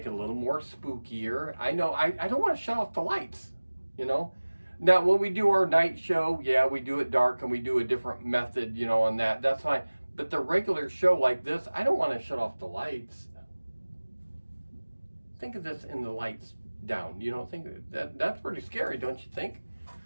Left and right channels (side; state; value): both; inverted; correlation -1.00